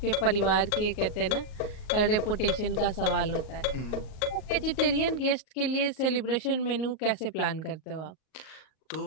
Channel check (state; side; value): late; right; 38 ms